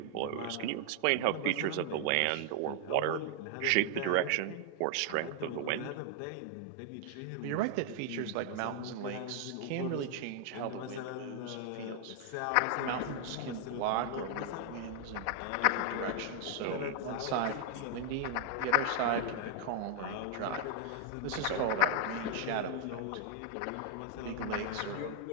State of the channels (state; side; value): different; both; correlation 0.00